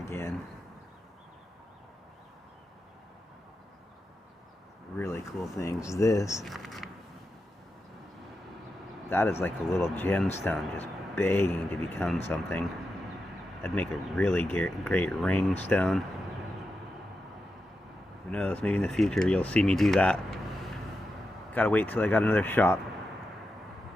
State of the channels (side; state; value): both; normal; correlation 0.89